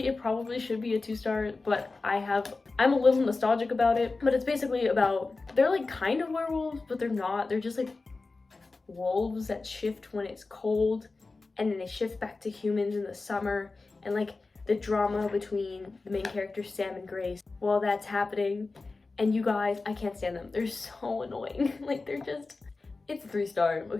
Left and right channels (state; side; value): quieter; right; 3.7 dB